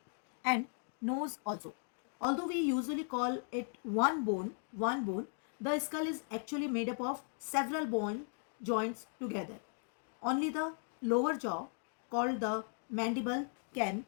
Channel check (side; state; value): right; silent; 53 dB below the other